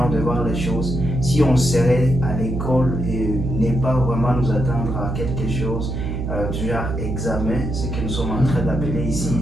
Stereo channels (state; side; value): noise; right; hum, 3 dB below the sound